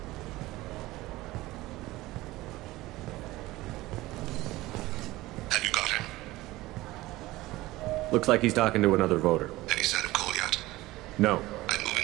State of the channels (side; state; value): left; quieter; 18.4 dB